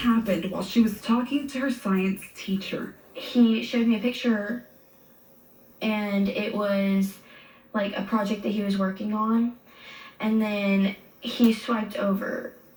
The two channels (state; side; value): identical; both; correlation 1.00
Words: while she was talking to her science teacher. He showed me a picture, and it was like a project that he was working on. And then he swiped over,